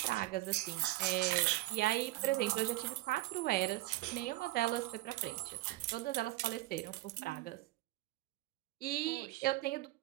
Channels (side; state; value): left; quieter; 17.8 dB